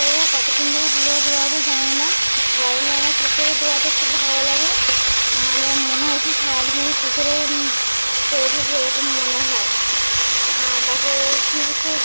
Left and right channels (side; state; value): both; inverted; correlation -1.00